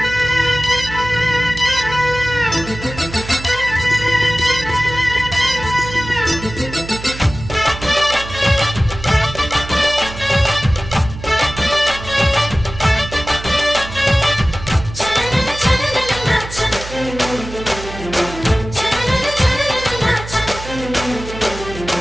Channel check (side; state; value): right; noise; hum, 11 dB below the sound